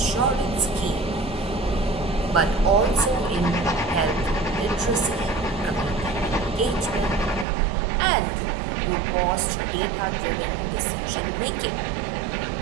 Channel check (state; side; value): drops out; left; at 7.5 s